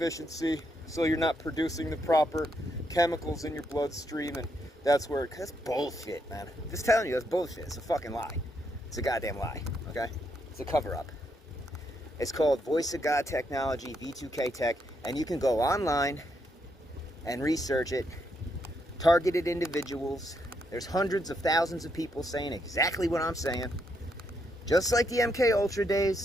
so you're not producing the proper chemicals in your bloodstream, and that's where that's bullshit, man. I'm just telling you, that's bullshit. It's a fucking lie. It's a goddamn lie, okay? It's a cover-up. It's called Voice of God Technology, V2K Tech, and you can go online and research it. Targeted individuals. There's hundreds of thousands of people saying exactly what I'm saying. Just like the MK Ultra days,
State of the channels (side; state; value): both; normal; correlation 0.77